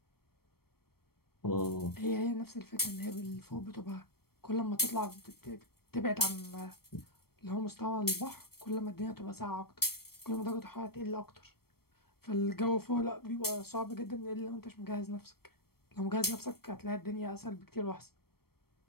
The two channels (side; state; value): right; late; 0.94 ms